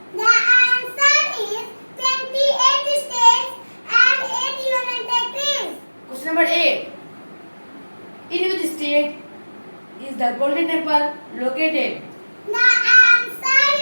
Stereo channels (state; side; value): inverted; both; correlation -1.00